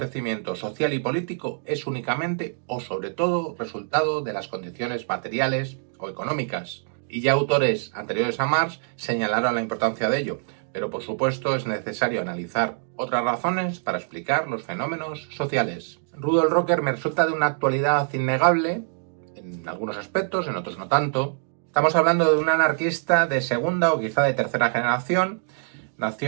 social y político es únicamente o sobre todo resultado de las condiciones materiales o económicas. Y ya autores anteriores a Marx señalaron la importancia de ello, pero por supuesto es necesario analizar otras razones para explicar los fenómenos sociales. Rudolf Rocker me resulta de una actualidad innegable, en algunos aspectos, en otros no tanto. Estamos hablando de un anarquista de segunda o quizá de tercera generación.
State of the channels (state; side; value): silent; left; digital silence